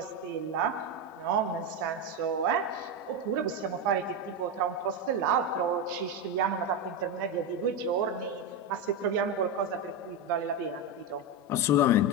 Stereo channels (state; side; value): normal; both; correlation 0.12